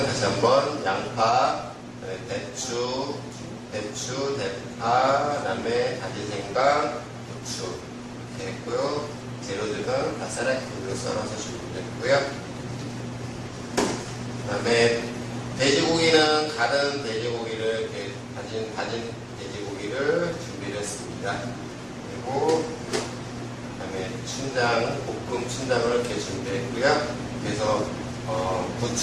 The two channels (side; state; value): both; identical; correlation 1.00